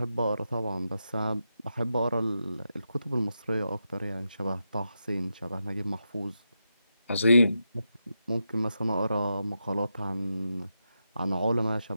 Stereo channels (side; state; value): both; inverted; correlation -0.87